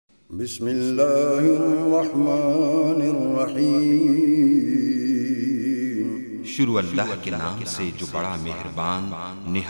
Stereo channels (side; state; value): both; inverted; correlation -1.00